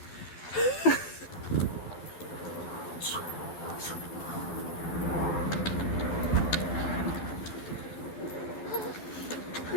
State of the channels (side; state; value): right; late; 12 ms